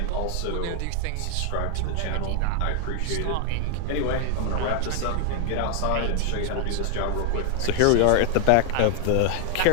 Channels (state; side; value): different; both; correlation 0.00